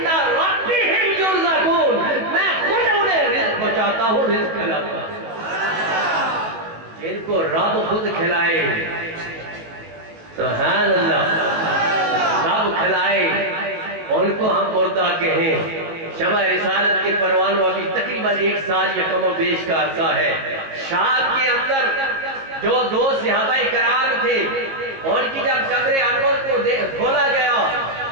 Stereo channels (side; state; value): left; late; 18 ms